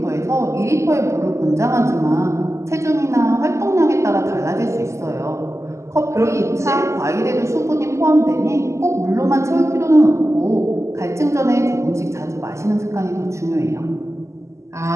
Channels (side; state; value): left; late; 0.14 ms